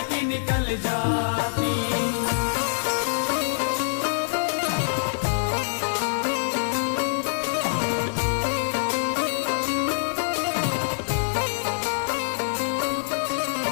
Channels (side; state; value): right; silent; 62 dB below the other